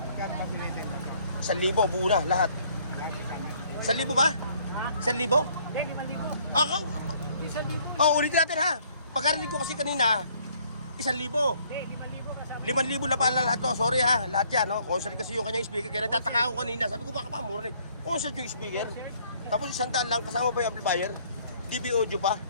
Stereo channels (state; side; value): inverted; both; correlation -0.62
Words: ba Pilipin? 1,000, buo na, lahat. 1,000 ba? 1,000? Hindi, 5,000. Ako? Hindi, 1,000. Oh, ulitin natin, ha. Pagkarinig ko kasi kanina, 1,000. Hindi, 5,000 kasama. 5,000 na pala lahat to. Sorry ha, lahat yan. No? Concert kasi yung kanyang speaker. Kaya nagtataka ako kanina. Sabi ko baka pa mura na eh. Concert yung speaker. Tapos 100 lang. Kasama pa yung amplifier. DB audio pa.